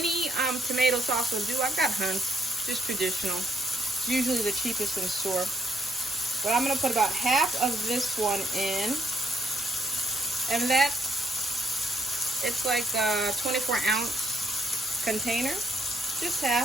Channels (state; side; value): normal; both; correlation 0.72